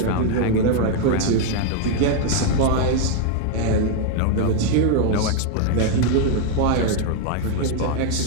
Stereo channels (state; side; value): different; both; correlation 0.00